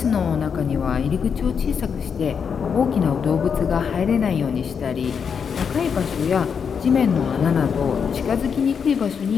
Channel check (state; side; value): quieter; right; 6.7 dB